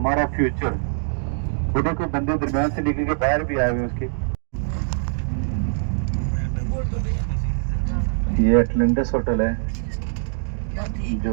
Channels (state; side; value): silent; left; digital silence